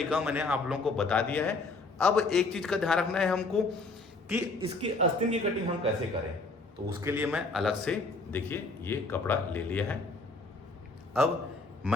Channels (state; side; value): quieter; right; 3.4 dB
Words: मैंने आप लोगों को बता दिया है। अब एक चीज का ध्यान रखना है हमको कि इसकी आस्तीन की कटिंग हम कैसे करें। तो उसके लिए मैं अलग से देखिए ये कपड़ा ले लिया है। अब